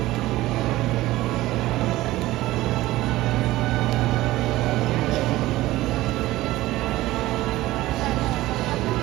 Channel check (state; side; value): quieter; left; 17.2 dB